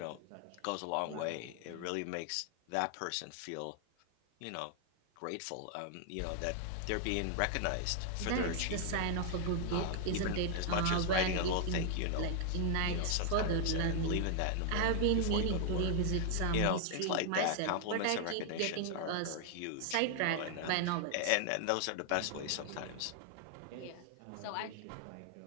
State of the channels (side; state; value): both; different; correlation 0.00